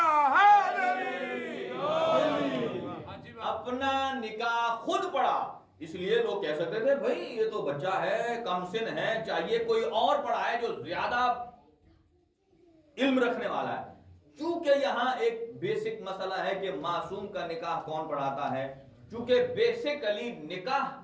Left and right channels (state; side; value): identical; both; correlation 1.00